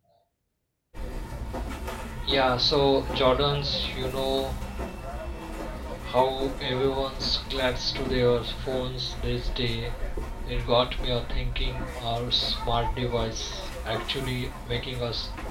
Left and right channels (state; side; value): identical; both; correlation 1.00